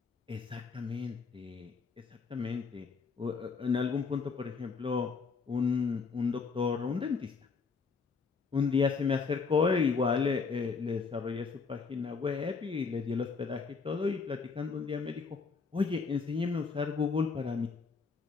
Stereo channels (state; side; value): quieter; right; 5.0 dB